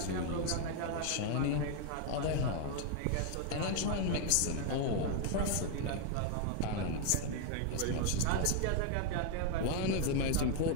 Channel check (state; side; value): different; both; correlation 0.00